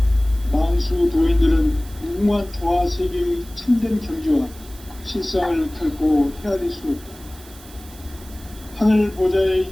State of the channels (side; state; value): right; noise; hiss, 21 dB below the sound